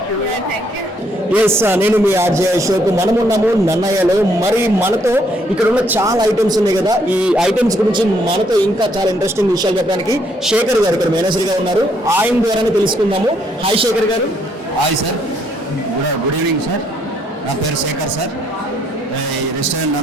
you. Thank you. Yes నేను మీ ఆర్జే అశోక్. మనం ఉన్నాము నన్నయ్యలో. మరి మనతో ఇక్కడ ఉన్న చాలా ఐటమ్స్ ఉన్నాయి కదా, ఈ ఐటమ్స్ గురించి మనతో ఇంకా చాలా ఇంట్రెస్టింగ్ విషయాలు చెప్పడానికి శేఖర్ గారు ఇక్కడ మేనేజర్ గా ఉన్నారు. ఆయన ద్వారానే తెలుసుకుందాము. హాయ్ శేఖర్ గారు. Hi sir, good evening sir. నా పేరు శేఖర్ సార్, ఈ రెస్టారెంట్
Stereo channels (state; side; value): normal; both; correlation 0.70